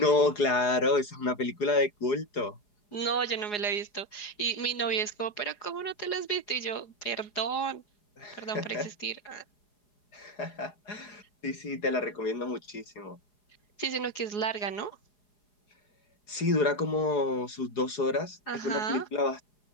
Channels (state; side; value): late; right; 4.8 ms